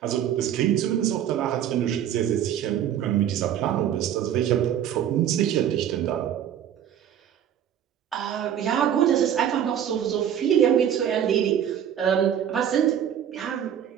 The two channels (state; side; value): quieter; left; 9.9 dB